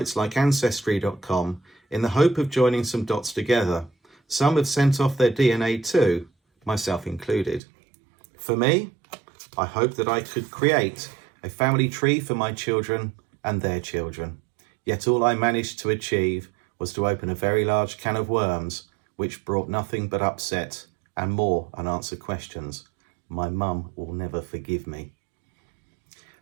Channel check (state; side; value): drops out; left; at 7.6 s